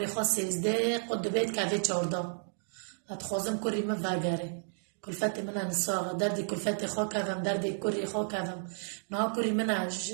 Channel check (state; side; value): silent; left; digital silence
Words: خاص 13 قد بیت که 14 اتخوازم کری من وگره کلفت من نساغ دردی کلفت خوا کردم دردی کری خوا کردم نه کری من